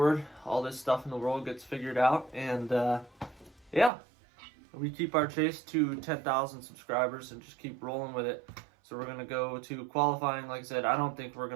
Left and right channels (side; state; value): left; drops out; at 3.9 s